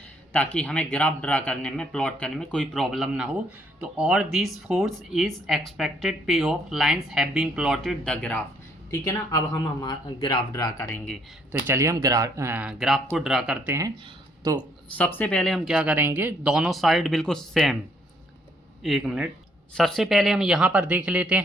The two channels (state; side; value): normal; both; correlation 0.68